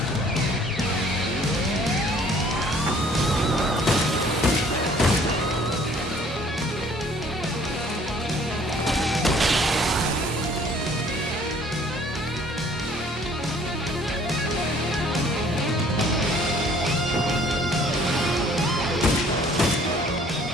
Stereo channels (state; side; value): normal; both; correlation 0.57